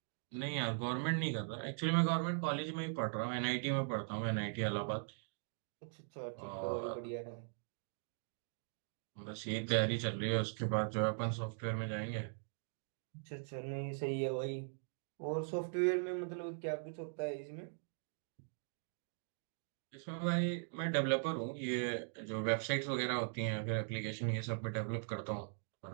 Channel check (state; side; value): silent; left; digital silence